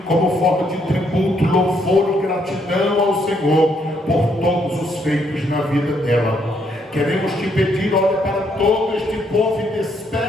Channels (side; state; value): both; normal; correlation 0.72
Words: como forma de tributo, louvor e gratidão ao Senhor por todos os feitos na vida dela. Queremos te pedir, olha para todo este povo e